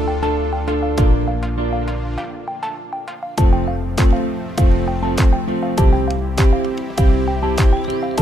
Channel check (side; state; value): both; normal; correlation 0.81